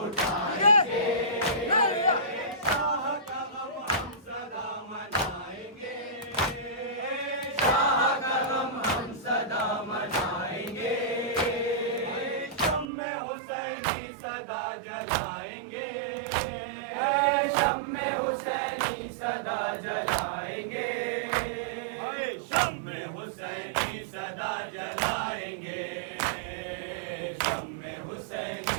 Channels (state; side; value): drops out; left; at 12.9 s